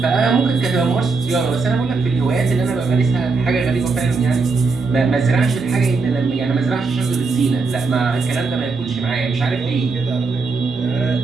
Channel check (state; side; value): quieter; left; 4.3 dB